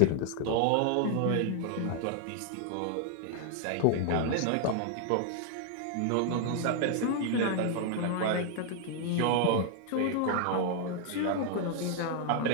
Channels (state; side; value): different; both; correlation 0.00